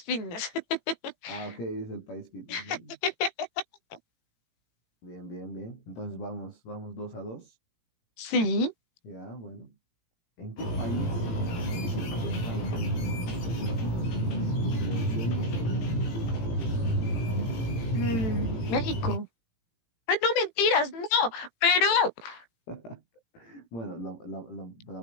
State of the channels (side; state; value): right; late; 18 ms